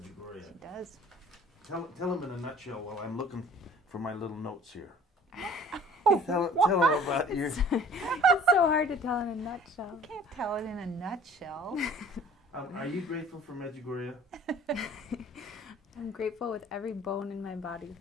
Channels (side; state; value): both; normal; correlation 0.50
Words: She does. Tell him in a nutshell while I'm looking for my little notes here. Tell him about your... It's so hard to tell in a nutshell. You can't tell it in a nutshell. Are you grateful for Medjugorje? I'm grateful with every bone in my body